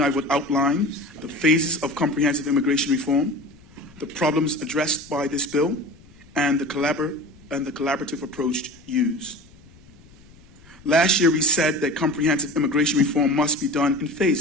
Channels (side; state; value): left; noise; rumble, 25 dB below the sound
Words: I would outline the phases of comprehensive immigration reform, the problems addressed by this bill, and the collaborative approach used. Last year we said that comprehensive immigration reform must be done in